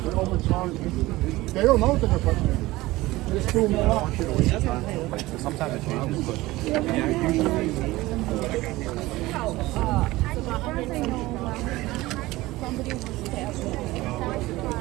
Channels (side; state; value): left; quieter; 18.9 dB